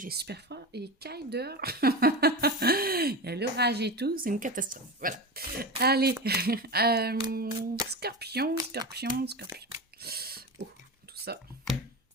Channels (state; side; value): normal; both; correlation 0.24